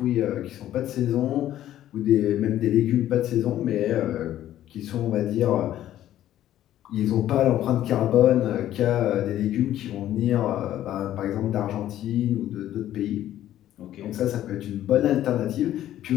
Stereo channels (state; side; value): quieter; right; 12.6 dB